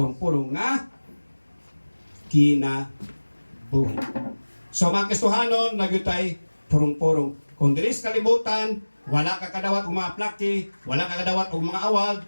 nga kinabuhi. So mga Kristohanon, nagyutay purong-purong. Kung diris kalibutan, wala ka kadawat o mga plaki, wala ka kadawat o mga awag,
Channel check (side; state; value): both; inverted; correlation -1.00